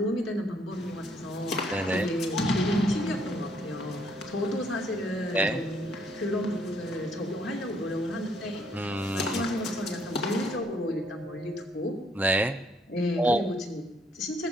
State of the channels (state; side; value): normal; both; correlation 0.67